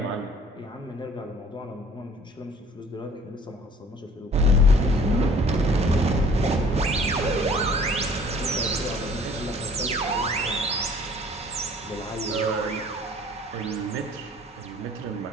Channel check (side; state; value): both; normal; correlation 0.53